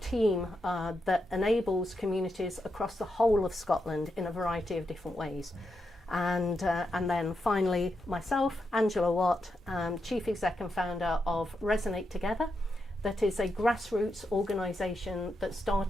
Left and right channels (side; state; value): both; normal; correlation 0.85